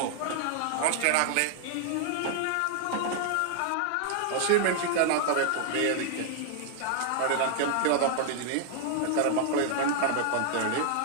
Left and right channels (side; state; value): both; different; correlation 0.00